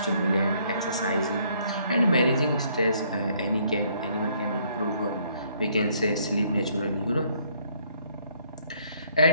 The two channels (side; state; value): both; inverted; correlation -0.66